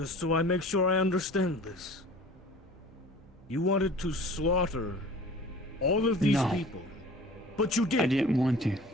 so I make sure I understand this, you wanted to slaughter all of these people, but you did. I didn't want to.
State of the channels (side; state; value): both; normal; correlation 0.44